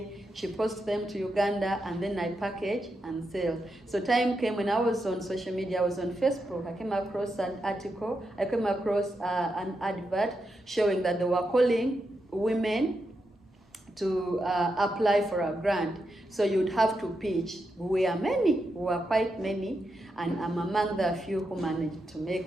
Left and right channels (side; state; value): both; normal; correlation 0.85